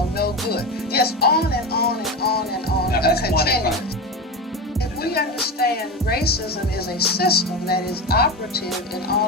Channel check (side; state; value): both; normal; correlation 0.21